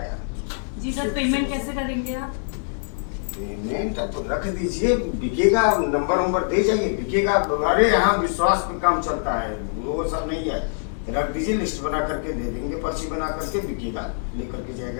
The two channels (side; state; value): right; silent; digital silence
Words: जी सर, पेमेंट कैसे करेंगे आप? पेमेंट तो रख दीजिए, बिकेगा, नंबर दे जाइए, बिकेगा। अरे यहाँ विश्वास पे काम चलता है, वो सब नहीं है। रख दीजिए, लिस्ट बना करके दे देंगे, पर्ची बना करके, बिकेगा, लेकर के